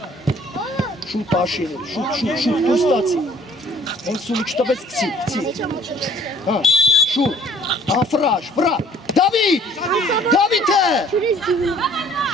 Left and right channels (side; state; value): both; normal; correlation 0.56